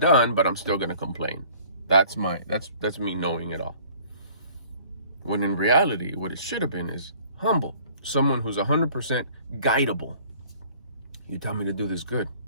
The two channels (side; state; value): both; inverted; correlation -0.53